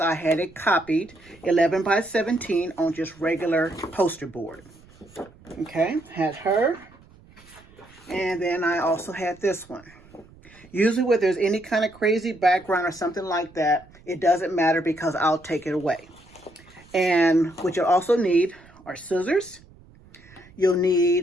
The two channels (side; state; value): right; noise; rumble, 25 dB below the sound